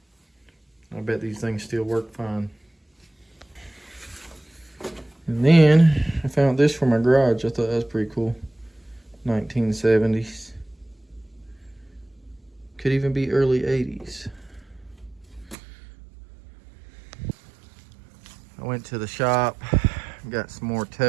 I bet these things still work fine. And then I found this for my garage. I thought that was pretty cool. 1970s. Could even be early 80s. I went to the shop, got some more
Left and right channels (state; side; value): drops out; left; at 15.6 s